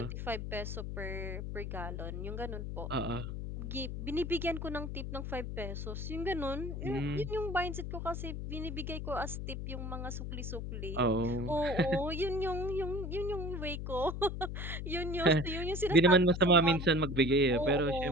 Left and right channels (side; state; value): left; noise; hum, 5 dB below the sound